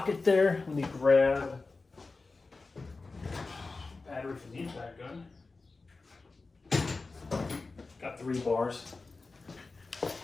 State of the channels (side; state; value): right; quieter; 3.8 dB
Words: there. Let me grab battery from the impact gun. Got 3 bars.